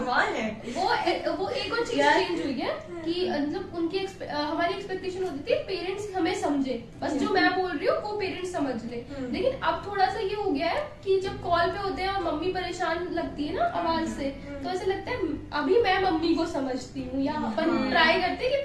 है। वो एक और चीज चेंज हुई है कि मतलब उनकी हमारी एक्सपेक्टेशन होती थी पेरेंट्स हमें समझे, बस जो मैं बोल रही हूँ वो पेरेंट्स समझ ले। लेकिन अब थोड़ा सा ये हो गया है कि जब कॉल पे होते हैं और मम्मी परेशान लगती है ना आवाज से, तो ऐसे लगता है अभी मैं मम्मी को समझती हूँ, या अपन ट्राई करते हैं कि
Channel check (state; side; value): identical; both; correlation 1.00